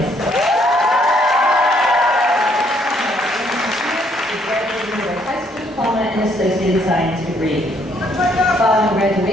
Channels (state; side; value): normal; both; correlation 0.68